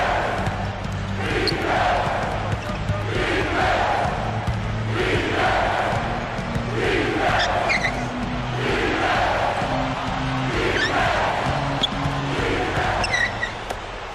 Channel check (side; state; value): both; identical; correlation 1.00